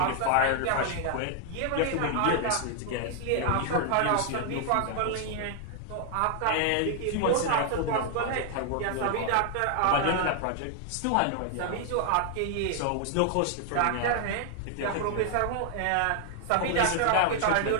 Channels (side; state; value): both; different; correlation 0.00